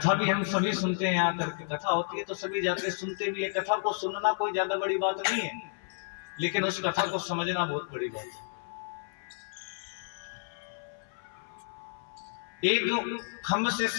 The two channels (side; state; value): right; silent; 56 dB below the other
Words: भी हम सभी सुनते हैं, यहाँ करके कथा होती है तो सभी जाते सुनते भी है। कथा को सुनना कोई ज्यादा बड़ी बात नहीं है, लेकिन उस कथा को समझना बहुत बड़ी बात है। एक खम्भ से